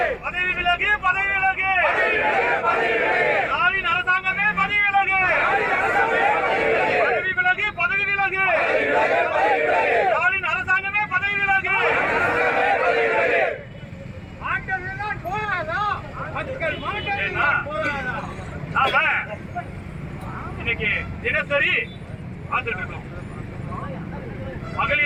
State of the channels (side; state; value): both; identical; correlation 1.00